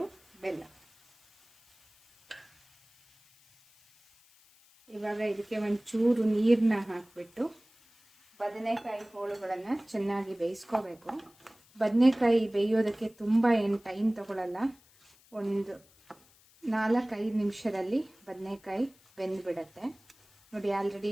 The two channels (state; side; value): noise; left; hiss, 29 dB below the sound